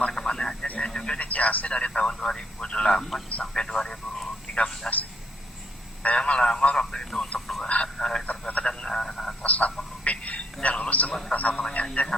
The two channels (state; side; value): normal; both; correlation 0.70